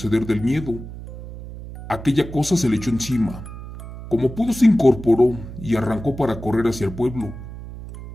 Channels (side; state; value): right; noise; hum, 12 dB below the sound